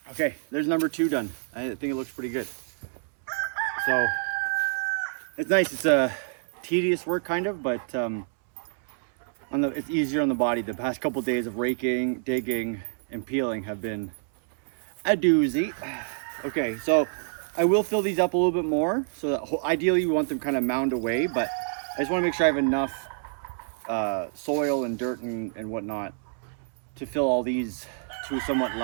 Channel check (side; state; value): left; silent; 60 dB below the other